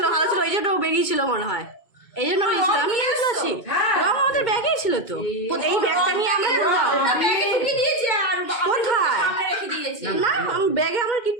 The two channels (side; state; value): right; late; 2.2 ms